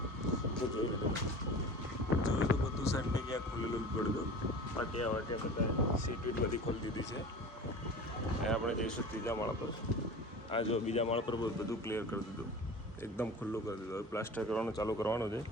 તો જોઈ લીધું. જોયું તો બધું સેન્ટિંગ ક્યાં ખોલેલું જ પડ્યું. પાટિયા વાટિયા બધા સીટ વીટ બધી ખોલી દીધી છે. એ આપણે જઈશું 3જા માળ પર. આ જો 2જા માળ પર બધું ક્લિયર કરી દીધું, એકદમ ખુલ્લું કરી દીધું. હવે પ્લાસ્ટર કરવાનું ચાલુ કરવાનું છે.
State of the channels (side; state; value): both; normal; correlation 0.37